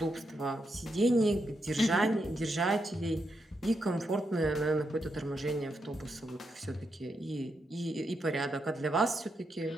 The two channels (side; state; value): both; normal; correlation 0.83